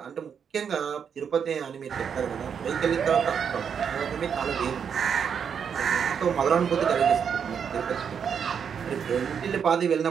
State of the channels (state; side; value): quieter; left; 7.3 dB